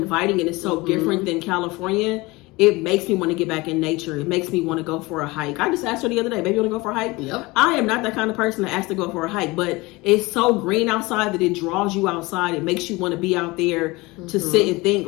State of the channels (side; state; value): right; quieter; 22.6 dB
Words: and it's so different than California. It makes me want to get back in nature. It makes me want to go for a hike. I just asked her the other day, baby, you want to go for a hike? Yep. I am not that kind of person to ask to go for a hike, but it's so green outside that it draws you outside. It makes you want to be out there to sit and think.